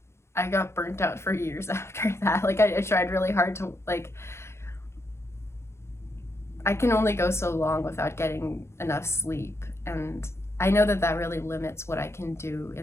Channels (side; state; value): right; late; 0.13 ms